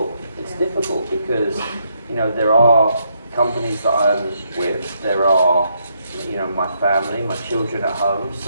It's difficult because, there are companies that I'm with, there are, my family, my children at home,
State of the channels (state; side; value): inverted; both; correlation -0.76